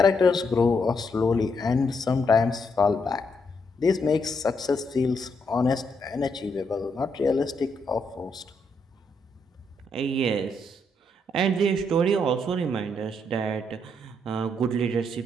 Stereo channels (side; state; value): both; normal; correlation 0.77